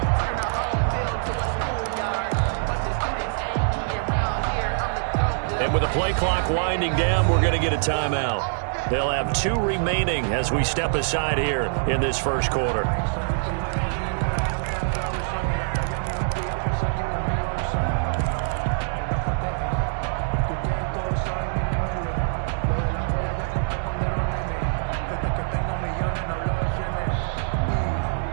And with the play clock winding down, we're going to get a timeout. They'll have 2 remaining as we step aside here in this first quarter.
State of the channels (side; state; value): left; silent; digital silence